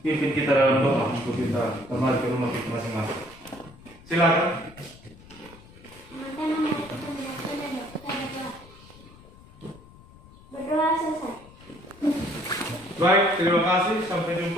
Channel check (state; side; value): noise; left; rumble, 22 dB below the sound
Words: pimpin kita dalam doa untuk kita kembali ke rumah kita masing-masing. Silakan. Berdoa selesai. Baik, terima kasih. Sampai